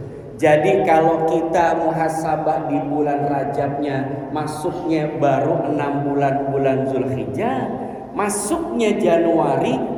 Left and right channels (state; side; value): identical; both; correlation 1.00